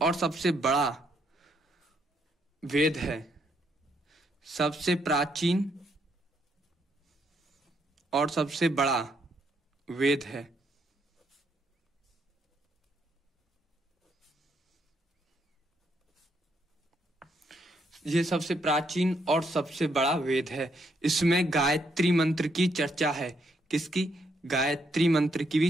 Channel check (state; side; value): normal; both; correlation 0.74